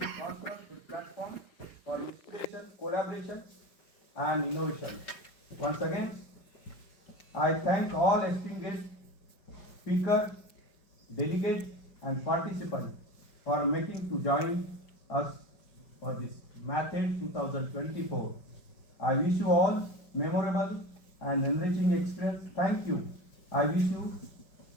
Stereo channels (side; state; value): right; late; 5.1 ms